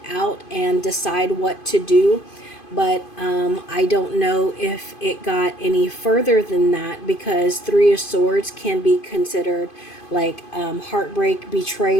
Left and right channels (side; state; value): right; late; 2.5 ms